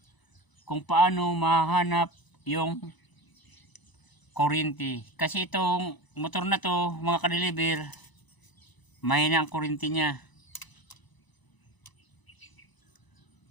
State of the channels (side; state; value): right; late; 1.0 ms